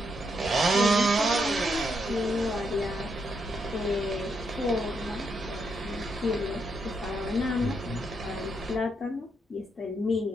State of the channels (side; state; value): both; normal; correlation 0.79